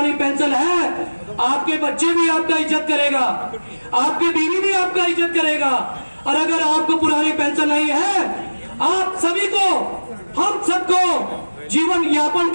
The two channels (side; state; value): both; inverted; correlation -1.00